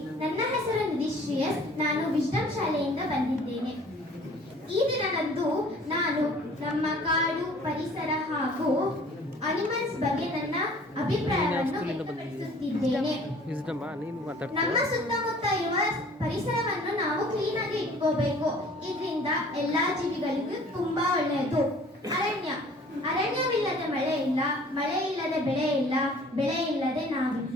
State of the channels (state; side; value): normal; both; correlation 0.51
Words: ನನ್ನ ಹೆಸರು ನಿಧಿಶ್ರೇಯಸ್. ನಾನು ವಿಜ್ಡಮ್ ಶಾಲೆಯಿಂದ ಬಂದಿದ್ದೇನೆ. ಈ ದಿನದಂದು ನಾನು ನಮ್ಮ ಕಾಡು, ಪರಿಸರ ಹಾಗೂ ಅನಿಮಲ್ಸ್ ಬಗ್ಗೆ ನನ್ನ ಅಭಿಪ್ರಾಯವನ್ನು ವ್ಯಕ್ತಪಡಿಸುತ್ತಿದ್ದೇನೆ. ನಮ್ಮ ಸುತ್ತಮುತ್ತ ಇರುವ ಪರಿಸರವನ್ನು ನಾವು ಕ್ಲೀನ್ ಆಗಿ ಇಟ್ಕೋಬೇಕು. ಇದರಿಂದ ಎಲ್ಲಾ ಜೀವಿಗಳಿಗೂ ತುಂಬಾ ಒಳ್ಳೆಯದು. ಅರಣ್ಯವಿಲ್ಲದೆ ಮಳೆ ಇಲ್ಲ, ಮಳೆ ಇಲ್ಲದೆ ಬೆಳೆ ಇಲ್ಲ, ಬೆಳೆ ಇಲ್ಲದೆ